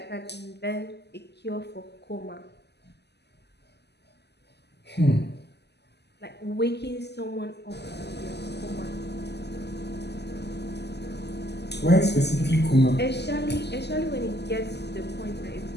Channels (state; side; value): late; right; 0.49 ms